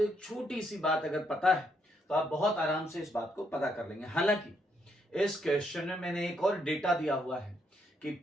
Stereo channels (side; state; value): both; normal; correlation 0.75